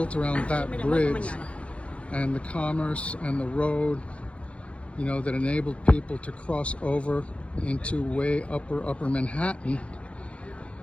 around that bridge and the commerce and the road, you know, that enabled people to cross over into way upper Manhattan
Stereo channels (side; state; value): right; late; 0.062 ms